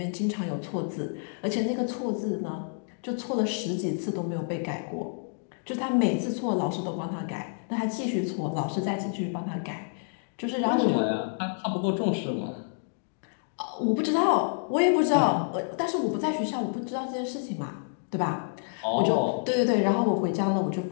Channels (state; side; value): silent; right; digital silence